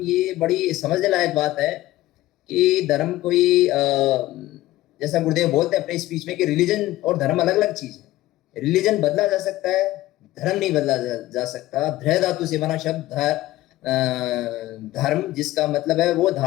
बड़ी समझने लायक बात है कि धर्म कोई जैसा गुरुदेव बोलते हैं अपने स्पीच में कि रिलीजन और धर्म अलग अलग चीज है। रिलीजन बदला जा सकता है, धर्म नहीं बदला जा सकता। धृ धातु से बना शब्द धर्म, जिसका मतलब है वो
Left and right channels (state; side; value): quieter; right; 16.2 dB